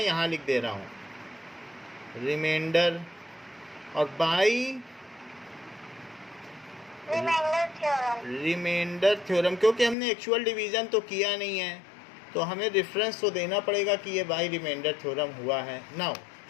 यहाँ लिख दे रहा हूँ, रिमाइंडर, और by remainder theorem. Remainder theorem, क्योंकि हमने एक्चुअल डिवीज़न तो किया नहीं है तो हमें रेफरेंस तो देना पड़ेगा कि ये बाई रिमाइंडर थ्योरम हुआ है। नाउ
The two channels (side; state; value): right; drops out; at 10.0 s